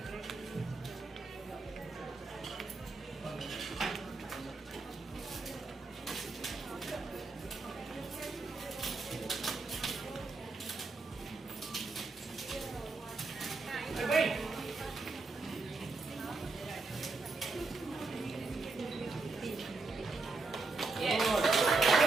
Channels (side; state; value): left; quieter; 3.8 dB